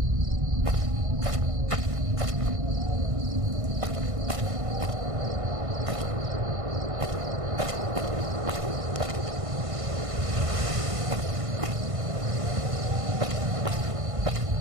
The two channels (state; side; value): late; left; 1.5 ms